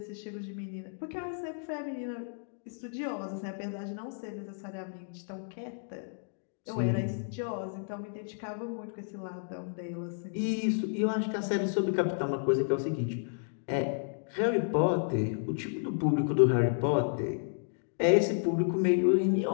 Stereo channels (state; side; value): silent; right; digital silence